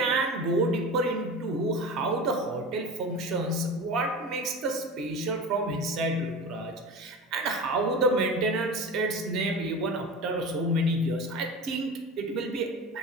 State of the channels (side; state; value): both; normal; correlation 0.31